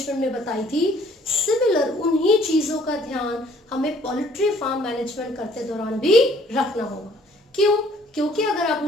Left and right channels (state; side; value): normal; both; correlation 0.59